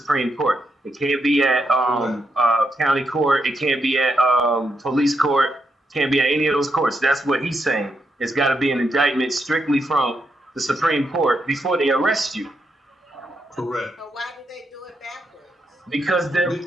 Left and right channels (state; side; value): normal; both; correlation 0.81